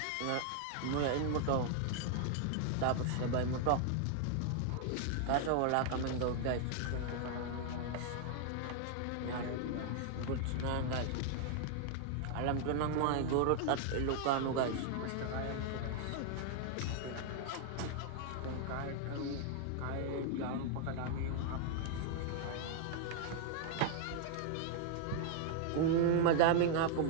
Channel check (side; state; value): both; different; correlation 0.00